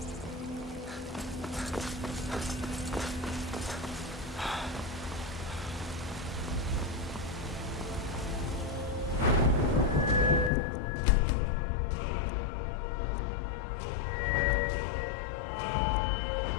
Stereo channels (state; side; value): drops out; right; at 10.5 s